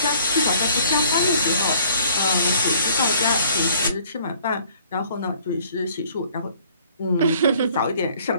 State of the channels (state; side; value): inverted; both; correlation -0.58